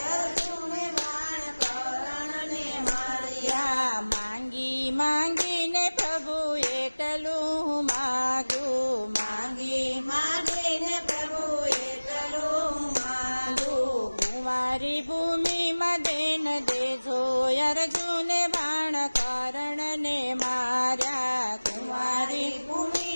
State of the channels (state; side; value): inverted; both; correlation -1.00